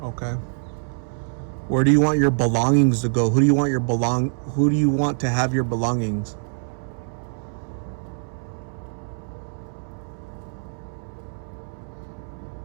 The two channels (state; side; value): silent; left; 62 dB below the other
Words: Okay. Where do you want your belongings to go? Who do you want Who do you want to have your belongings?